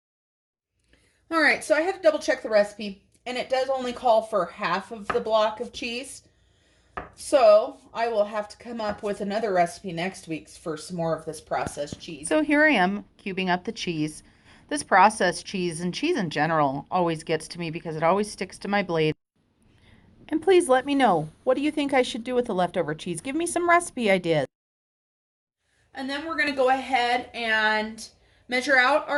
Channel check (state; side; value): identical; both; correlation 1.00